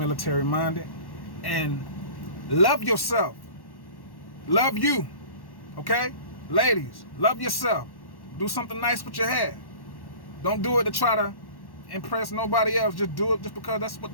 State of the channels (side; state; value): right; late; 1.1 ms